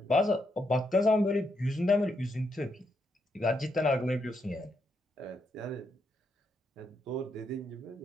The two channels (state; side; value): normal; both; correlation 0.80